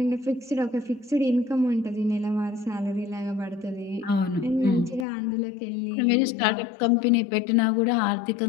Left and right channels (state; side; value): drops out; right; at 5.1 s